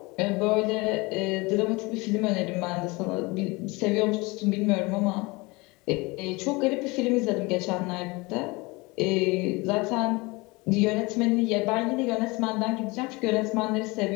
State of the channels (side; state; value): right; quieter; 24.7 dB